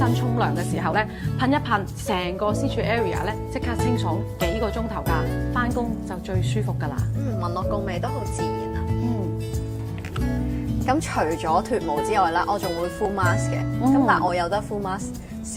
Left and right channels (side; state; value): both; identical; correlation 1.00